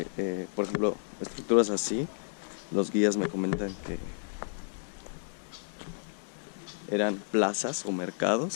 por ejemplo, estructuras así, los guías me comentan que eran plazas o mercados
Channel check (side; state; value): right; silent; digital silence